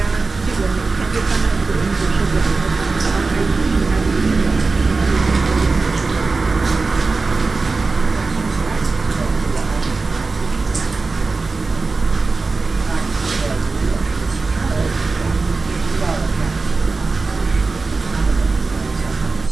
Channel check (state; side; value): quieter; left; 3.9 dB